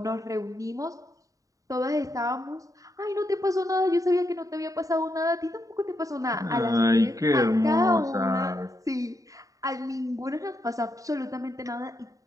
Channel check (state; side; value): late; left; 0.16 ms